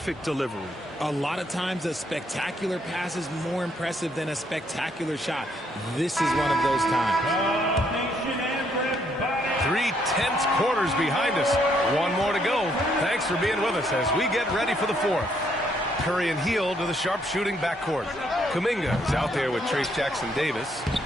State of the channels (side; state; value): both; normal; correlation 0.71